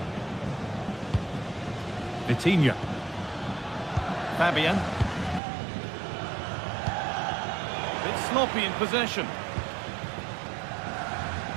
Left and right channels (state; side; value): drops out; left; at 5.4 s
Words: Vitinha. Fabian. Bit sloppy in possession.